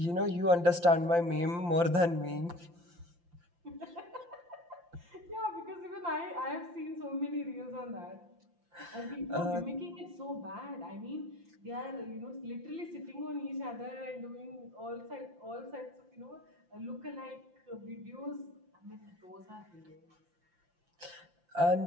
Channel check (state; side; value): late; left; 5.8 ms